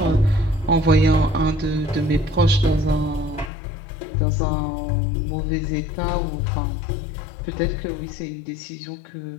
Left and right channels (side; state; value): right; drops out; at 3.5 s